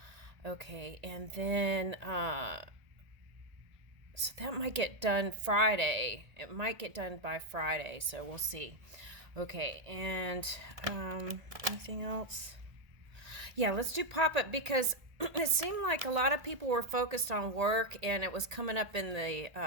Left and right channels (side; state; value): left; late; 1.8 ms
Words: Okay, and then so that might get done Friday. It might get done by Friday, so we'll see. Okay, and anything else? Yeah, let's do pop-up because it seemed like a lot of people were focused on work and it was coming up in the